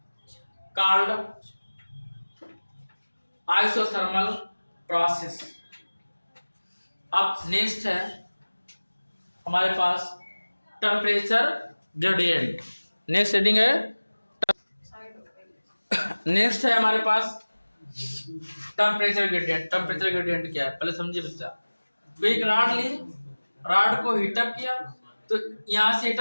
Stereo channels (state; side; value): inverted; both; correlation -1.00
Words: isothermal process। अब नेक्स्ट है हमारे पास टेम्परेचर ग्रेडियंट। नेक्स्ट हेडिंग है, नेक्स्ट है हमारे पास टेम्परेचर ग्रेडियंट। टेम्परेचर ग्रेडियंट क्या है पहले समझिए बच्चा। तो एक रॉड ली, रॉड को हीटअप किया, तो यहाँ से